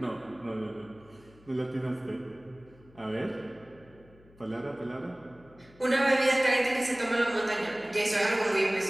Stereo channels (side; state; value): left; noise; hum, 26 dB below the sound